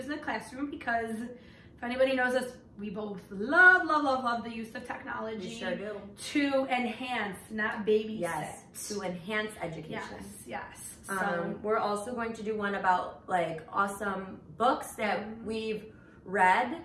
in the classroom, because if anybody knows us, we both love the use of technology. We sure do. To enhance, not babysit. Yes, to enhance education. Yes. So we're also going to do one about like awesome books that we've read,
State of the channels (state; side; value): identical; both; correlation 1.00